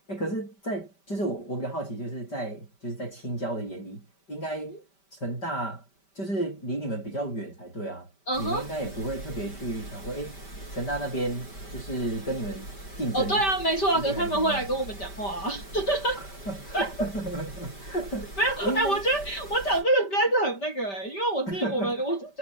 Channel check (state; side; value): late; right; 5.1 ms